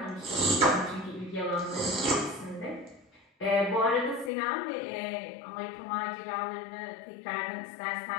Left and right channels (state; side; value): drops out; right; at 4.3 s